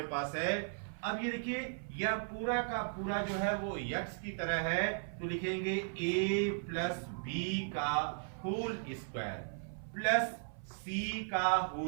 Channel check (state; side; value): silent; left; 53 dB below the other